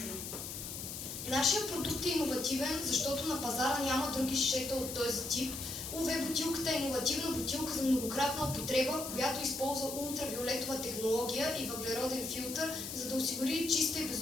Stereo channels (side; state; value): left; noise; hiss, 7 dB below the sound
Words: Нашия продукт е иновативен, защото на пазара няма други шишета от този тип. УВ бутилката е иновативна бутилка за многократна употреба, която използва ултравиолетова технология и въглероден филтър, за да осигури чиста и